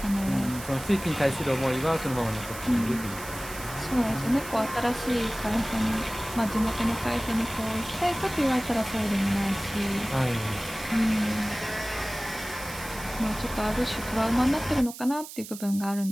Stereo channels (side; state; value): right; noise; hiss, 13 dB below the sound